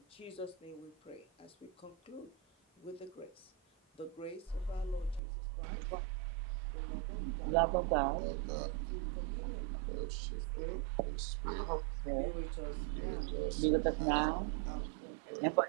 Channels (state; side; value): drops out; left; at 5.2 s